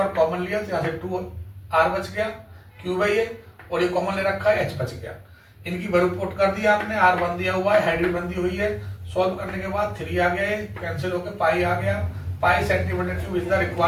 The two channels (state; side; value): identical; both; correlation 1.00